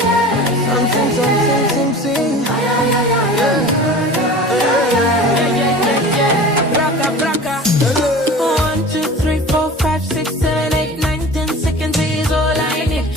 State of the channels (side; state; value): both; normal; correlation 0.38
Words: Something. Baraka. 1, 2, 3, 4, 5, 6, 7, 8, 9, 10 seconds is all I need